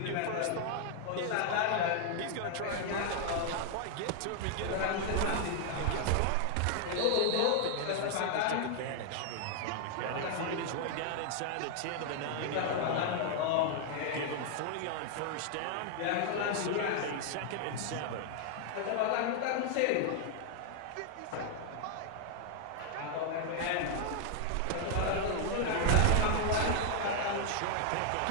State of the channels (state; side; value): different; both; correlation 0.00